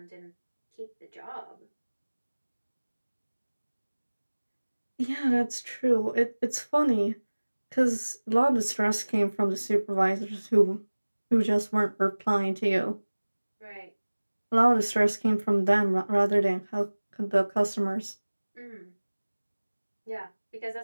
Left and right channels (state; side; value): inverted; both; correlation -1.00